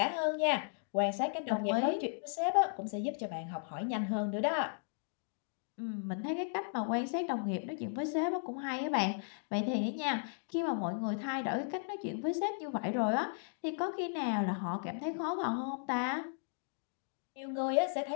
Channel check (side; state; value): right; silent; digital silence